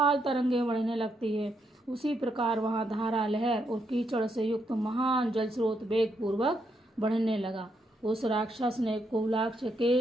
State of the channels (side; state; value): both; normal; correlation 0.78